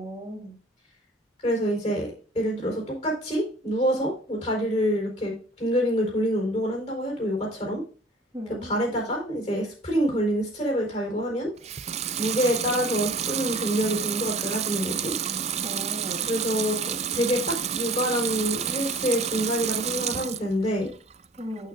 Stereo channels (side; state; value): both; normal; correlation 0.47